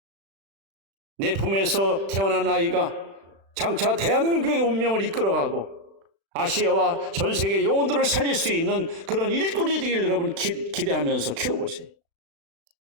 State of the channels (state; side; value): late; left; 36 ms